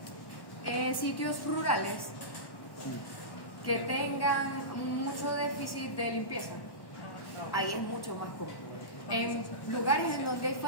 En sitios rurales que tengan mucho déficit de limpieza. Ahí es mucho más común. En lugares en donde hay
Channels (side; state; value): right; late; 1.1 ms